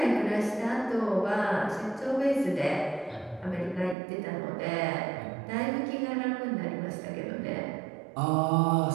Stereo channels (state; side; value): drops out; left; at 4.0 s